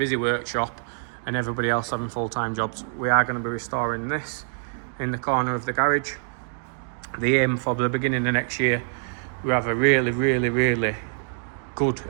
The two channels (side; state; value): left; silent; digital silence